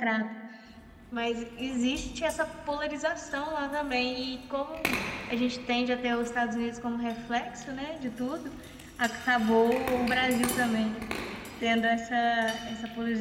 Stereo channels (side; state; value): both; identical; correlation 1.00